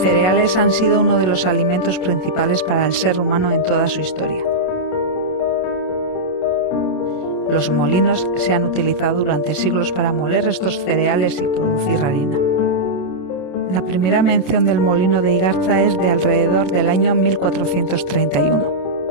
han sido uno de los alimentos principales para el ser humano en toda su historia. Los molinos se han utilizado durante siglos para moler estos cereales y producir harina. La primera mención del molino de Igarza es de alrededor del año 1431.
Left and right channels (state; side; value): late; right; 27 ms